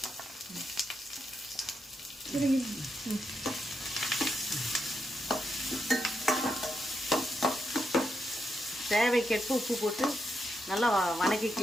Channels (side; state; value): both; normal; correlation 0.83